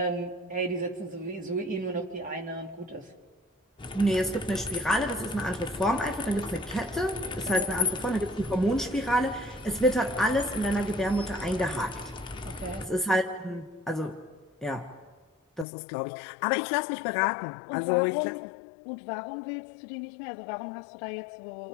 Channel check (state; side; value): drops out; right; at 15.7 s